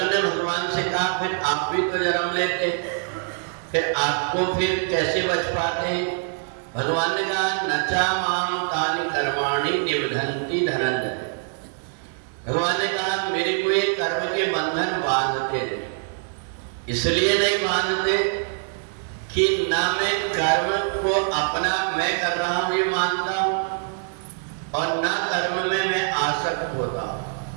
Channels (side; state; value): left; silent; 62 dB below the other